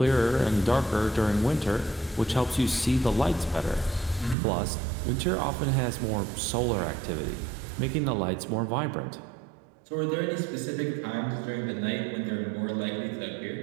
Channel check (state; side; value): drops out; left; at 4.4 s